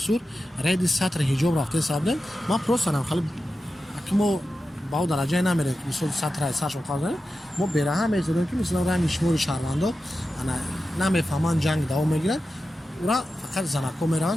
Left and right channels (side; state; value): both; normal; correlation 0.92